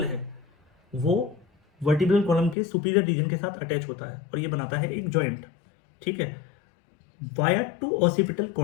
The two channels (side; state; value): right; drops out; at 2.6 s